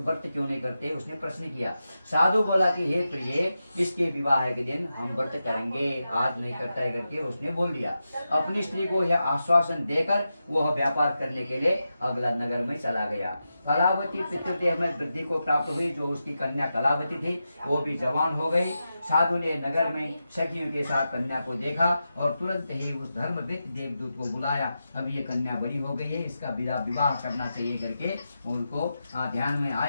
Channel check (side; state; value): both; inverted; correlation -0.90